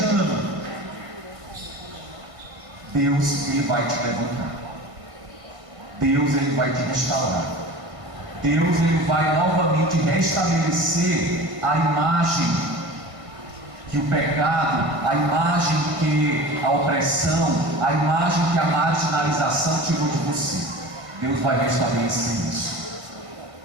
Deus, Ele vai te levantar. Deus, Ele vai te restaurar. Deus, Ele vai novamente restabelecer a imagem que o pecado, a imagem que a opressão, a imagem que a marginalização tirou de você. Deus vai restabelecer isso.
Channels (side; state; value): left; late; 1.6 ms